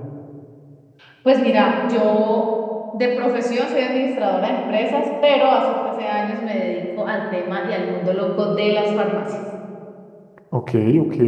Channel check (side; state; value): both; identical; correlation 1.00